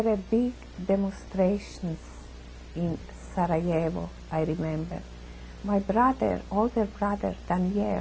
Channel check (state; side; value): identical; both; correlation 1.00